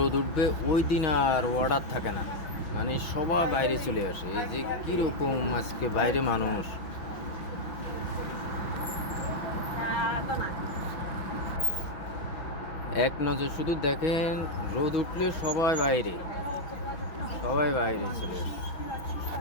উঠবে ওই দিন আর অর্ডার থাকে না, মানে সবাই বাইরে চলে আসে। এই যে কীরকম আজকে বাইরে মানুষ, এক নজর শুধু দেখেন, রোদ উঠলে সবাই বাইরে, সবাই বাইরে চলে আসে,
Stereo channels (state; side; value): late; right; 6.0 ms